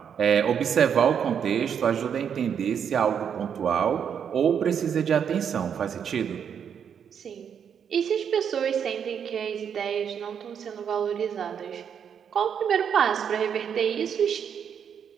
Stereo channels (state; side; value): quieter; left; 7.8 dB